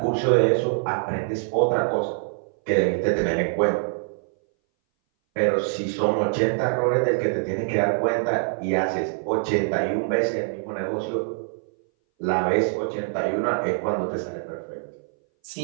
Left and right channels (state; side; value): silent; left; 60 dB below the other